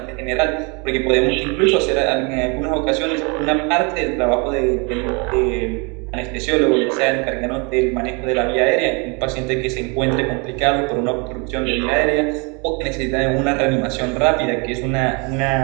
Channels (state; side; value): quieter; left; 31.6 dB